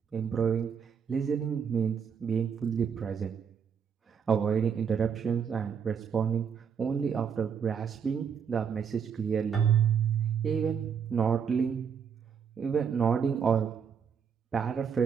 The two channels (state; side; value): quieter; left; 7.0 dB